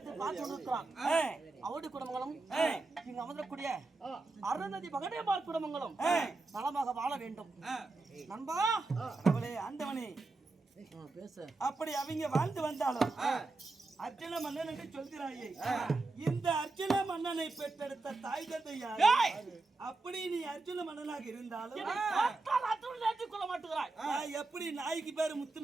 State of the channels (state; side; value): quieter; left; 3.5 dB